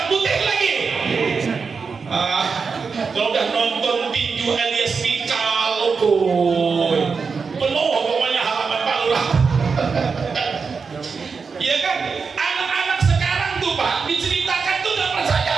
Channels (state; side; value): quieter; left; 5.2 dB